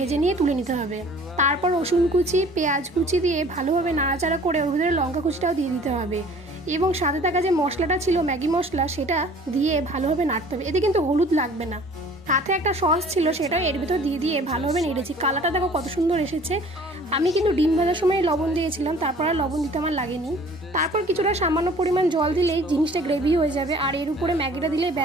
নিয়ে তুলে নিতে হবে। তারপর রসুন কুচি, পেঁয়াজ কুচি দিয়ে ভালোভাবে নাড়াচাড়া করে ওর ভিতরে লঙ্কা কুচিটাও দিয়ে দিতে হবে এবং সাথে থাকা যে মশলাটা ছিল ম্যাগি মশলা, সেটা দিয়ে ভালোভাবে নাড়তে হবে। এতে কিন্তু হলুদ লাগবে না। সাথে একটা সস ছিল, সেটাও এর ভিতর দিয়ে ভালোভাবে নেড়েছি। কালারটা দেখো কত সুন্দর এসেছে। আমি কিন্তু ডিম ভাজার সময় লবণ দিয়েছিলাম, তারপর আর লবণ দিতে আমার লাগেনি। তারপর কিছুটা সামান্য পরিমাণ জল দিলেই জিনিসটা গ্রেভি হয়ে যাবে, আর এর উপরে ম্যাগিটা দিলেই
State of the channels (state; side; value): normal; both; correlation 0.50